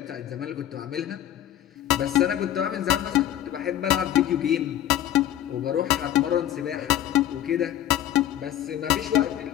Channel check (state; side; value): quieter; right; 11.8 dB